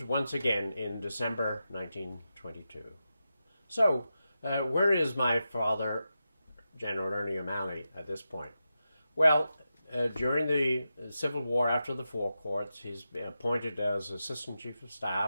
once again in December 1922. So, where is my father, General Ernie O'Malley, at this point? Well, during the Civil War after the Four Courts, he's been appointed as Assistant Chief of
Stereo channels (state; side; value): inverted; both; correlation -0.90